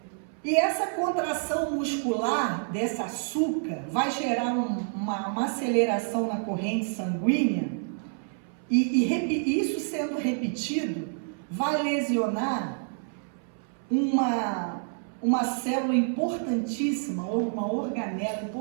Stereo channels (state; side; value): silent; left; 59 dB below the other